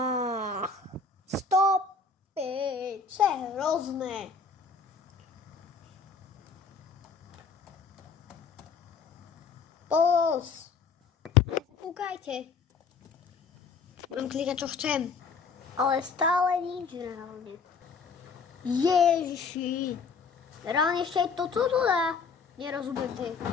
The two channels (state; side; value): quieter; right; 5.1 dB